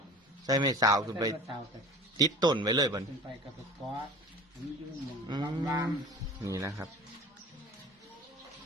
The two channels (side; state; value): both; normal; correlation 0.39